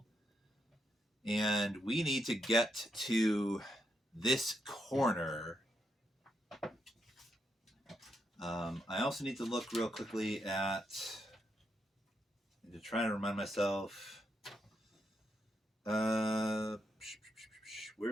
And we need to get to this corner. I also need to look real quickly at, to try to remind myself,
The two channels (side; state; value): both; normal; correlation 0.80